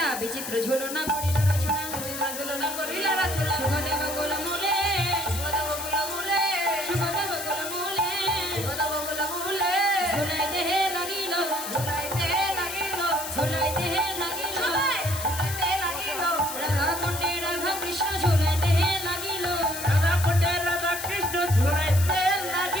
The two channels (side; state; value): left; noise; hiss, 7 dB below the sound